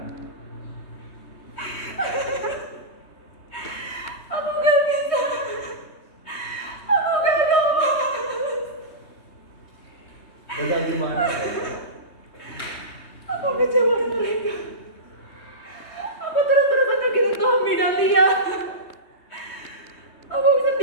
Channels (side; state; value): right; late; 3.2 ms